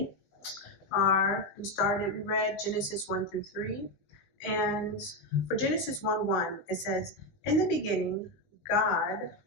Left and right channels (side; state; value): right; late; 20 ms